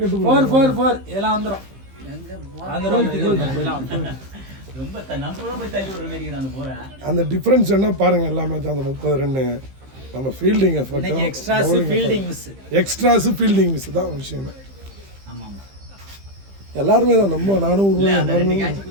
4 இதெல்லாம் வந்துடும். ரொம்ப நம்ம போய் தள்ளி விடுற மாதிரி நான் போறேன். அந்த டிஃபரன்ஸ் என்ன பாருங்க. எல்லா மேட்ச் அந்த 30 ரன்னு நம்ம fielding effort, extras fielding miss தான் விஷயமே. ஆமா ஆமா எல்லாருமே தான் நம்ம நானும்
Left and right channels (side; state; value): left; late; 15 ms